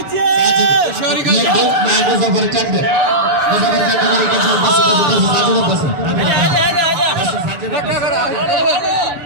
शोरी का मैं मुसाफिर कंडे मुसाफिर कंडे के बस धक्का करा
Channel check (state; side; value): late; left; 6.9 ms